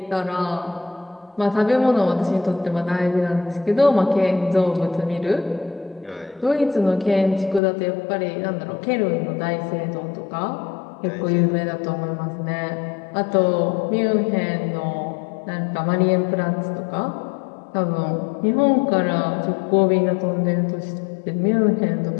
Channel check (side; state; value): right; drops out; at 7.6 s